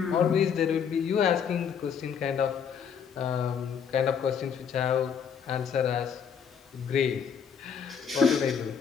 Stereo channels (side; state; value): right; quieter; 7.2 dB